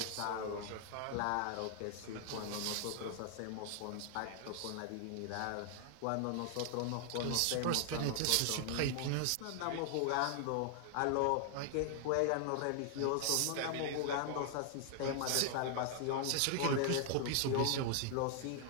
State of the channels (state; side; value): different; both; correlation 0.00